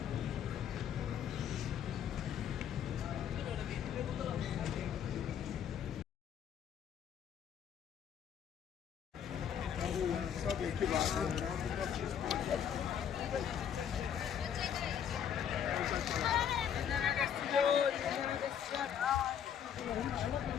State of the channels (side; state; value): right; quieter; 8.7 dB